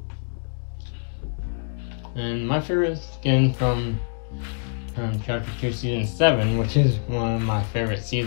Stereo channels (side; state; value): right; silent; digital silence